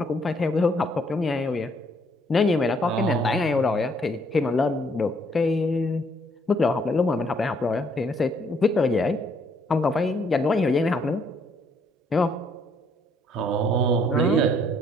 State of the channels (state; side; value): normal; both; correlation 0.67